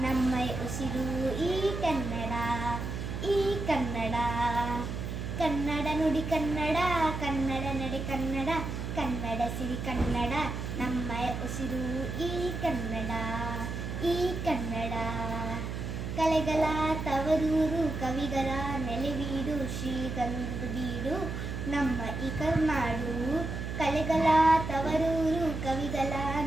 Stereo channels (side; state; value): right; noise; hum, 5 dB below the sound